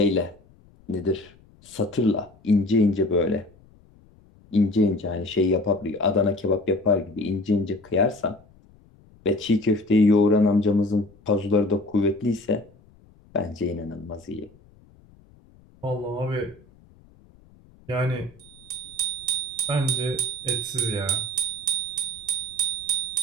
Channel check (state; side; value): noise; left; rumble, 27 dB below the sound